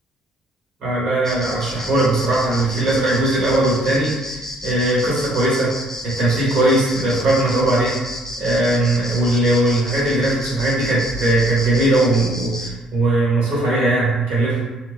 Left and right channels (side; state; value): both; normal; correlation 0.62